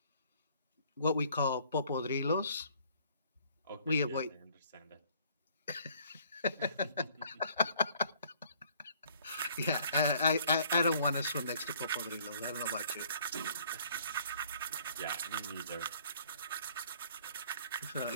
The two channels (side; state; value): both; inverted; correlation -0.59